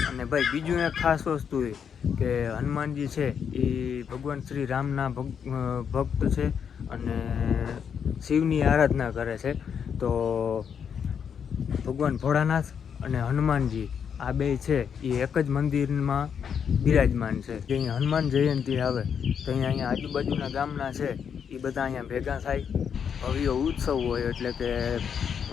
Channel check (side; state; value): right; quieter; 7.4 dB